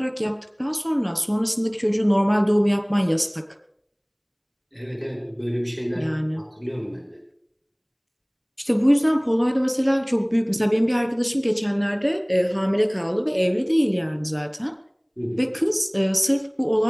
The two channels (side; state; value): both; identical; correlation 1.00